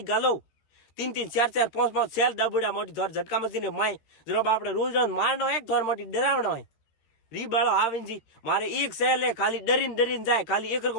गालो 3-3 4-4 5-5 सेल दाबुड़ा मोटी धर झटका मशीन माय जरो बापड़े रोज रोज मारनो एक धर मोटी डरावनो है री बाळो आवीन जी मारे एक सेल है खाली डरीन डरीन जाए खाली एक को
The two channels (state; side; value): late; right; 13 ms